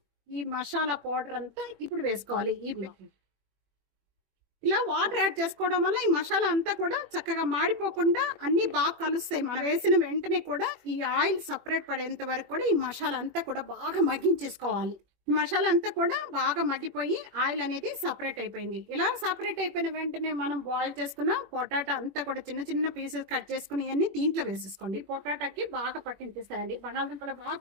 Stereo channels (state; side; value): late; left; 21 ms